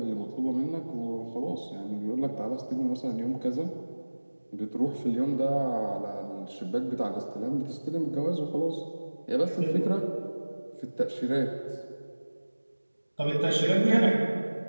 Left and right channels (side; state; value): both; inverted; correlation -1.00